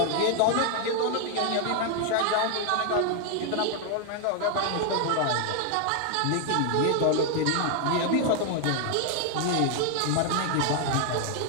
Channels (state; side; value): different; both; correlation 0.00